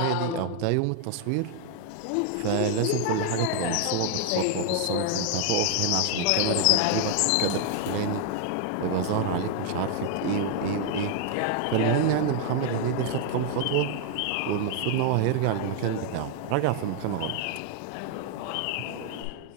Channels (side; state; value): both; different; correlation 0.00